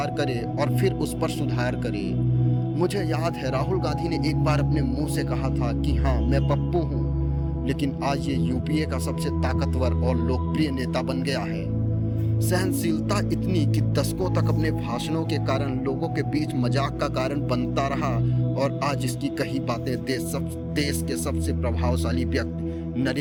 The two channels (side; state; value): both; identical; correlation 1.00